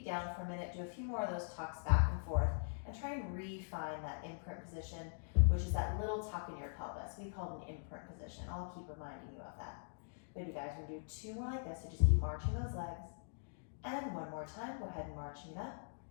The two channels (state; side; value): silent; right; digital silence